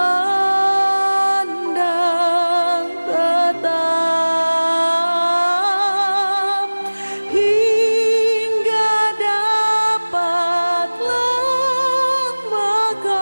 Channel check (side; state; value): both; inverted; correlation -1.00